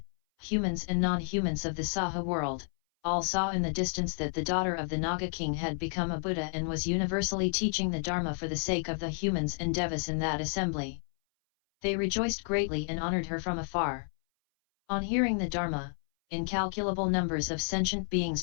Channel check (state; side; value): silent; right; 57 dB below the other